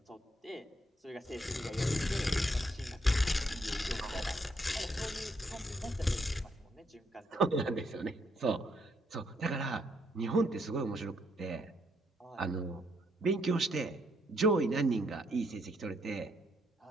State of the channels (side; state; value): both; normal; correlation 0.74